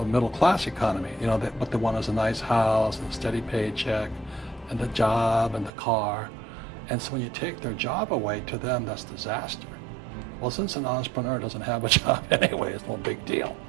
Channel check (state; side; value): drops out; left; at 5.7 s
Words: middle class economy. You know, what they want is a nice house and a steady paycheck and the job and the car. And so when you take their job away, to them, that's disaster. Well, since an entrepreneur doesn't have a job anyway, it's no big deal.